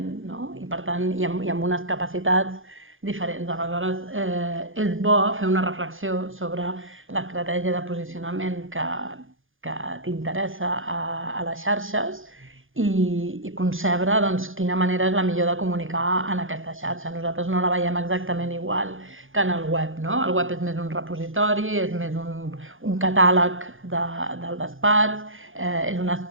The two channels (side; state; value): left; late; 0.58 ms